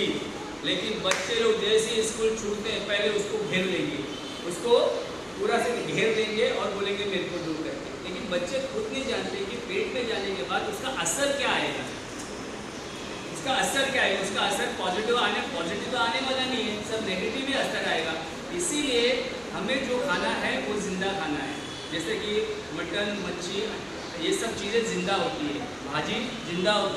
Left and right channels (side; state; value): both; identical; correlation 1.00